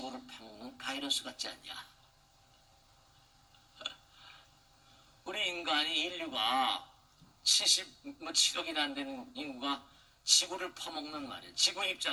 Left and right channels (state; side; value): identical; both; correlation 1.00